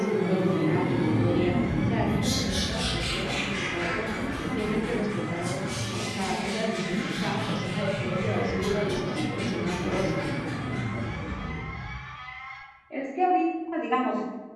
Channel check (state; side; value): identical; both; correlation 1.00